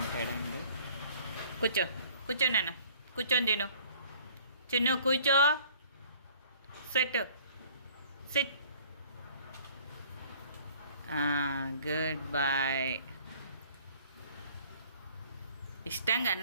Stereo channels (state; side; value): inverted; both; correlation -0.54